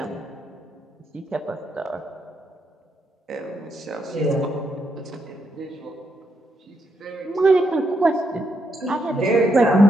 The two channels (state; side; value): normal; both; correlation 0.79